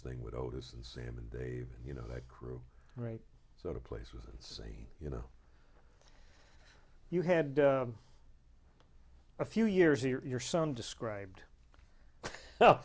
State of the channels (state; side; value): identical; both; correlation 1.00